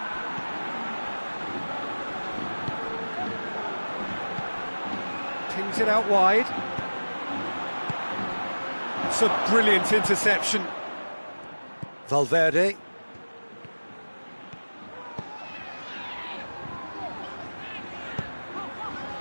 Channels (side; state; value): both; inverted; correlation -1.00